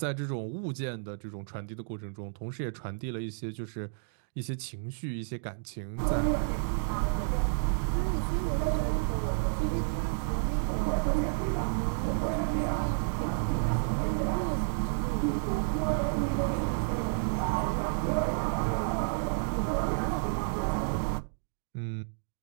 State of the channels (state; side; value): silent; left; digital silence